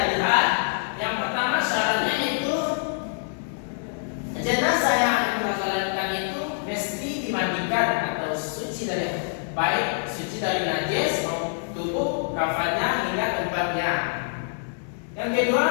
lihat, yang pertama syaratnya itu jenazah yang akan kita sholatkan itu mesti dimandikan atau suci dari baik suci dari najis maupun tubuh kafannya hingga tempatnya. Yang kedua,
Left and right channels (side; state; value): right; silent; 59 dB below the other